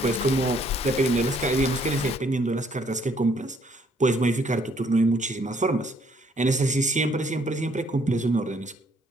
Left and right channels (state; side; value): normal; both; correlation 0.65